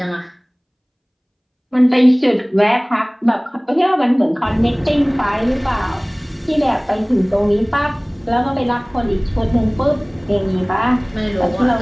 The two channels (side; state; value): both; identical; correlation 1.00